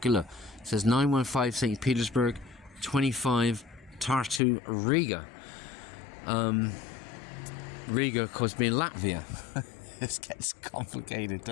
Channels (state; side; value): drops out; right; at 4.4 s